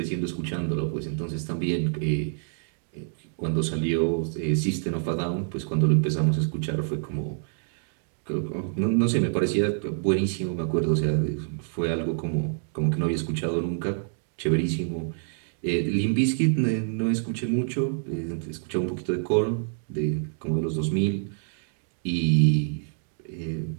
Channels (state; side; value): silent; left; digital silence